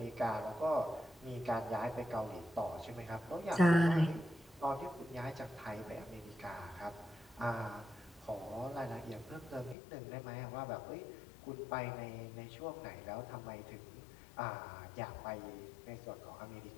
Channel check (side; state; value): right; drops out; at 9.8 s